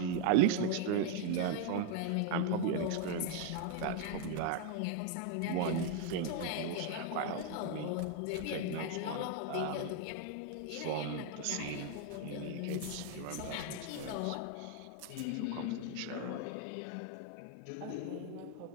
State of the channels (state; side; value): different; both; correlation 0.00